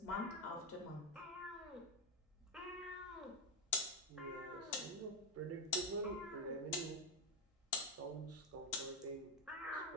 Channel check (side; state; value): both; normal; correlation 0.07